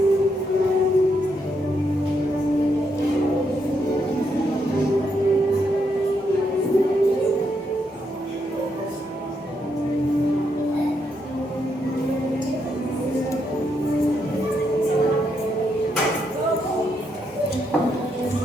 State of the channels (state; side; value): normal; both; correlation 0.78